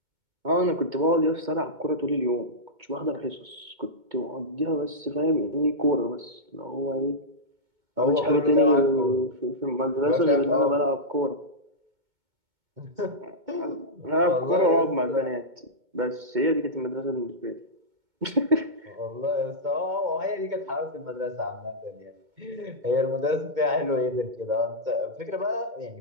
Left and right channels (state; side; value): late; left; 2.2 ms